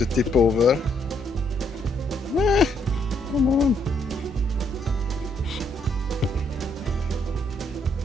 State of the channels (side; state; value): both; normal; correlation 0.72